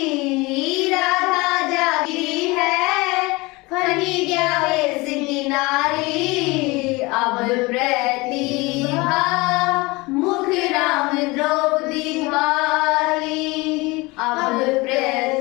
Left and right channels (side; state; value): right; quieter; 23.7 dB